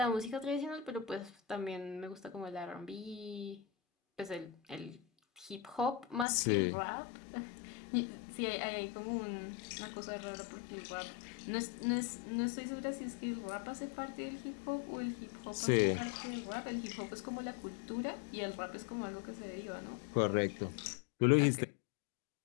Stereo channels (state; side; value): drops out; right; at 6.2 s